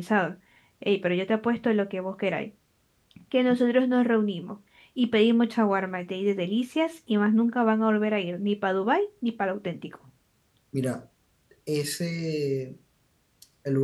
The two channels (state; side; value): identical; both; correlation 1.00